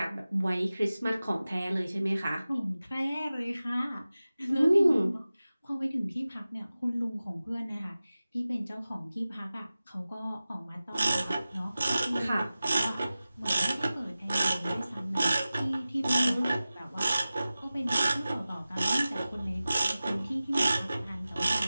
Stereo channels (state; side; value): inverted; both; correlation -0.96